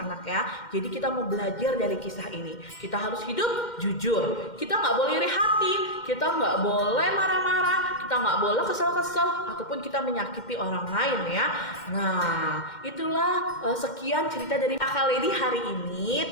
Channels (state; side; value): late; right; 2.1 ms